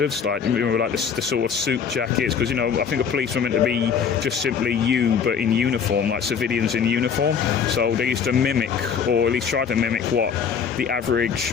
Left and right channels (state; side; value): quieter; right; 6.8 dB